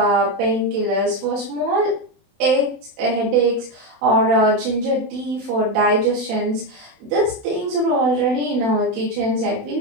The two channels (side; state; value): left; late; 28 ms